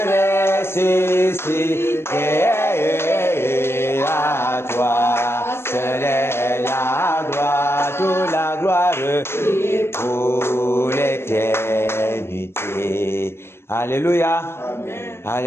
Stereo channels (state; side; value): late; right; 0.12 ms